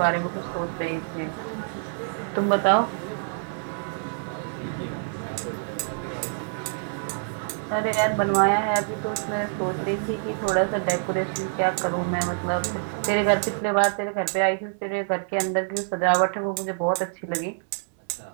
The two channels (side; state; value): left; silent; 61 dB below the other